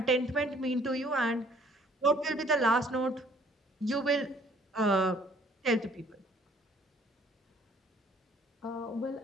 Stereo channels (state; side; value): normal; both; correlation 0.59